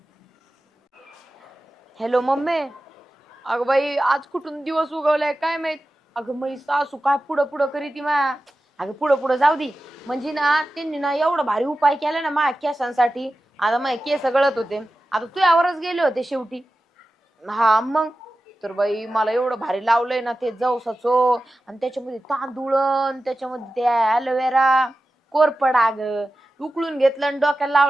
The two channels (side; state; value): both; normal; correlation 0.94